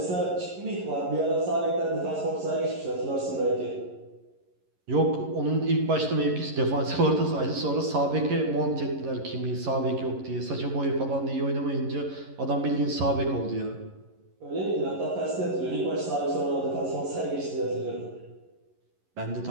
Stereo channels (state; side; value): late; left; 11 ms